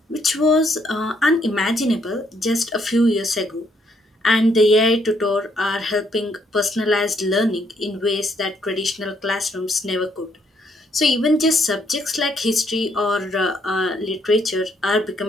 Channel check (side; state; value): both; normal; correlation 0.71